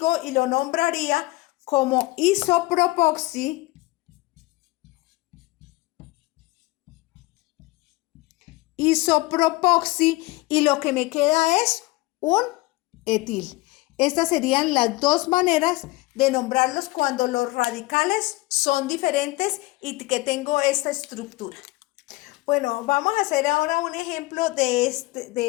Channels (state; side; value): quieter; right; 21.1 dB